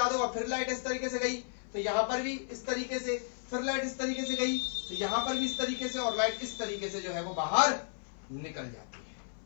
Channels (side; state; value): right; silent; 55 dB below the other